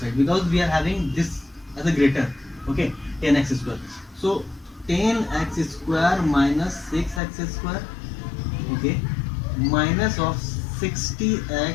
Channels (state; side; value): drops out; right; at 7.2 s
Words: because we are having this as a greater. Okay, 10x square. So 10x square minus 6x square. Okay, minus of 60x